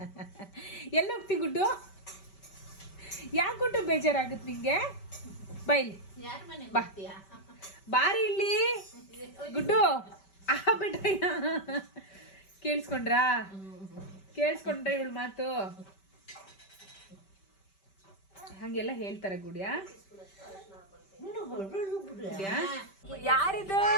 ಎಲ್ಲ ಹೋಗ್ತಿ ಗುಡ್ಡು? ಯಾಕೆ ಗುಡ್ಡು ಬೇಜಾರಾಗುತ್ತೆ ನಿಂಗೆ? ಬೈಲಿ ಬಾ ಬಾರಿ ಇಲ್ಲಿ ಗುಡ್ಡು ಬಿಟ್ರಯ್ಯ ಕೇಳಿಸ್ಕೊಂಡ್ರಾ ಇವಳು ಮಾತು ಹಂಗೆಲ್ಲ ಹೇಳ್ತಾರೆ ಗುಡಿಯಾ? ಯಾರಿದು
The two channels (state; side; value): late; right; 5.2 ms